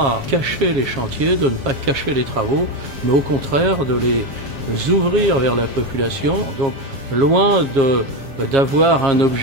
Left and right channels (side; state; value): left; late; 7.3 ms